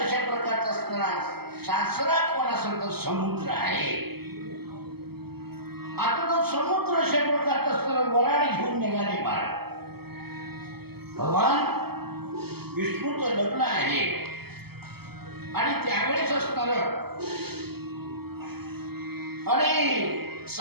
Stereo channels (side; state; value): left; late; 0.96 ms